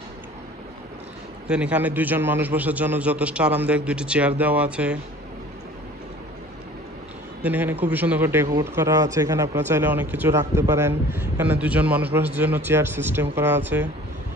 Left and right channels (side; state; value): both; normal; correlation 0.47